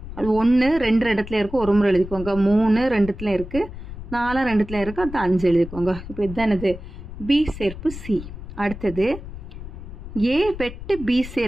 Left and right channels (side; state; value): left; noise; rumble, 12 dB below the sound